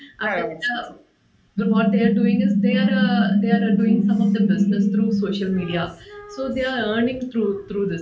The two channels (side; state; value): both; identical; correlation 1.00